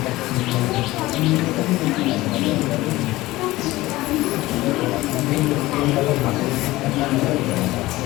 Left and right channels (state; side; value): quieter; right; 18.3 dB